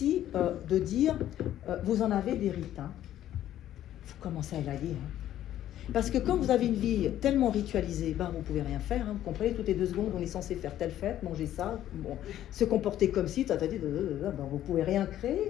de dire, vous en avez des rites, hein. Vous commencez à élaguer, hein. Parce que quand vous avez une vie tellement ritualisée, vous ne pouvez rien faire, hein. Vous comprenez, toutes les 2 secondes, on est censé faire telle fête, manger ça, bon, se comporter comme si, vous ne pouvez rien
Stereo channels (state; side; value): quieter; right; 12.2 dB